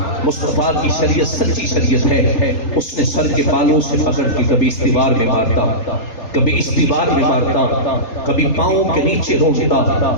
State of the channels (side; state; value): right; late; 3.8 ms